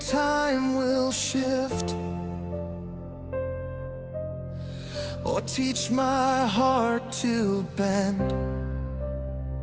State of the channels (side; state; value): both; identical; correlation 1.00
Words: will shift, or teach my heart to bend.